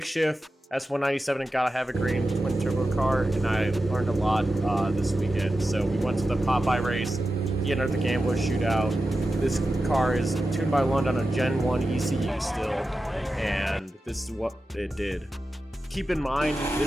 shift S197 and gotta have a green twin turbo car, and I learned a lot this weekend. So we went to the Popeye race. He entered the Gambler shootout. This car is tuned by London on a Gen 1 ECU still, and this is what it did. Keep in mind,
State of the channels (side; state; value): both; normal; correlation 0.92